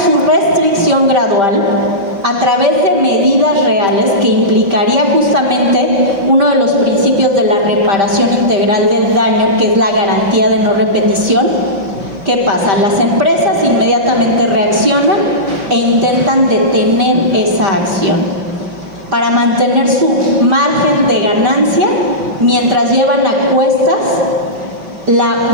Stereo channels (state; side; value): late; left; 5.1 ms